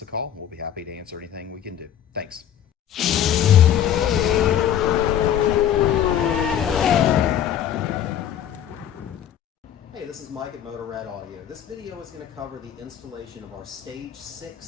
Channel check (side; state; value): right; quieter; 10.1 dB